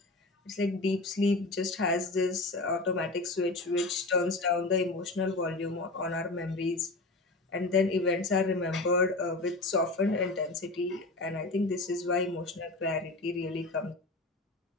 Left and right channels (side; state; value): right; quieter; 3.1 dB